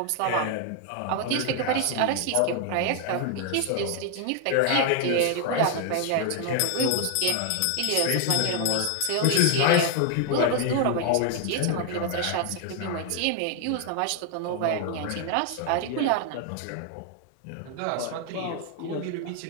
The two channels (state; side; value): different; both; correlation 0.00